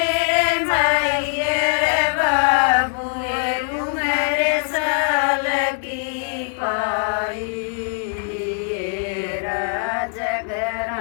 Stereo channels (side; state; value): right; silent; digital silence